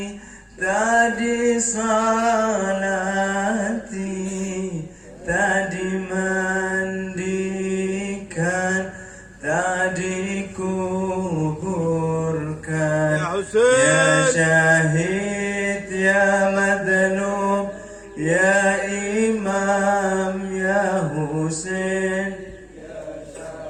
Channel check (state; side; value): identical; both; correlation 1.00